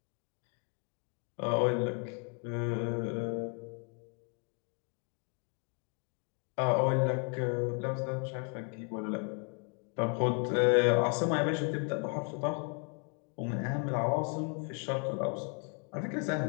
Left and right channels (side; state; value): right; quieter; 37.9 dB